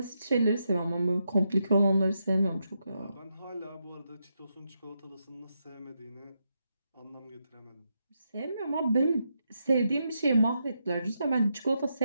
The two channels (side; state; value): both; inverted; correlation -0.83